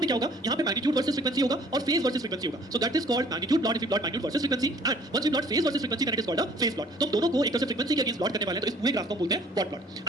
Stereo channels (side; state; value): both; normal; correlation 0.55